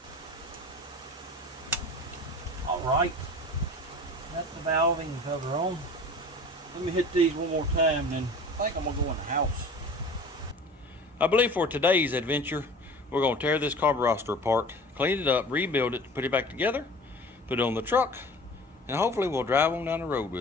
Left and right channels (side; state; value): both; normal; correlation 0.41